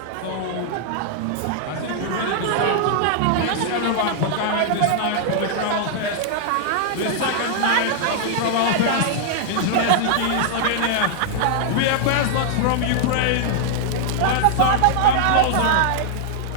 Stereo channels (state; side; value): different; both; correlation -0.01